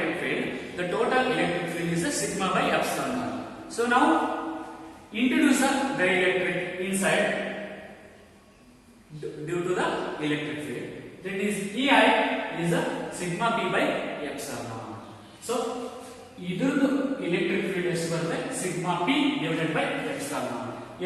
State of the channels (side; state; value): both; identical; correlation 1.00